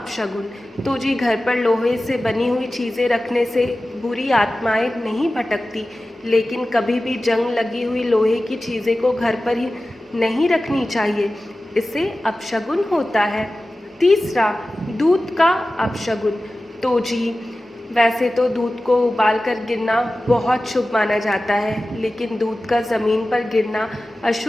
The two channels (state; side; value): normal; both; correlation 0.95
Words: तो जी घर पर लोहे से बनी हुई चीज़ें रखने से बुरी आत्माएं नहीं भटकती, लेकिन कभी भी जंग लगी हुई लोहे की चीज़ें को घर पर ही नहीं रखनी चाहिए, इससे अपशगुन होता है। तीसरा, दूध का अपशगुन। तो जी वैसे तो दूध को उबाल कर गिरना बहुत शुभ माना जाता है, लेकिन दूध का ज़मीन पर गिरना